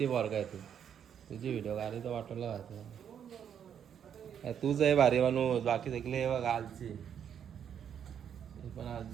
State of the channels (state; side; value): quieter; left; 8.6 dB